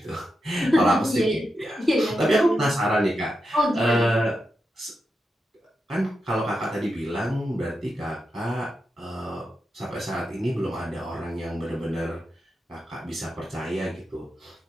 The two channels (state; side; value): normal; both; correlation 0.87